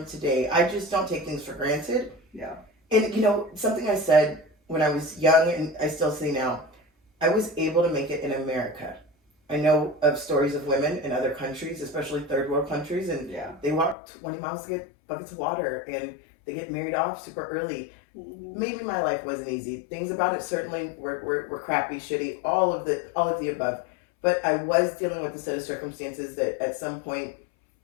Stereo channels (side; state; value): right; drops out; at 14.0 s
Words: today. I just don't take things for granted. Yeah. And something I said when I was young, and I still say now, I was able to make it in America. I know of stories of women in other countries, especially third world countries, and they walk 20 miles to get buckets of water, and they get married off super early. Mm-hmm. Maybe my life wasn't easy. Things about it certainly were crappy, shitty, all of the above. But I was dealing with a set of circumstances that at some point,